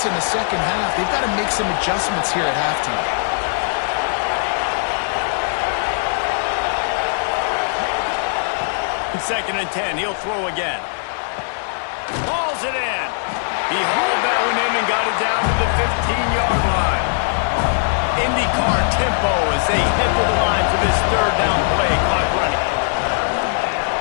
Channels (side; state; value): right; silent; digital silence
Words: in the second half, they've got to make some adjustments here at halftime. In 2nd and 10, he'll throw again. Hauls it in. He hauled that one in and got it down to the 15-yard line. IndyCar tempo as they head to the line for this 3rd down play. Clock running.